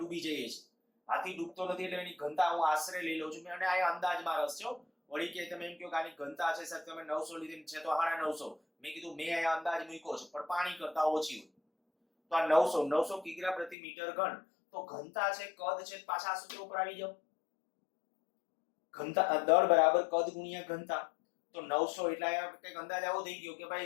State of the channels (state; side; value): drops out; right; at 13.8 s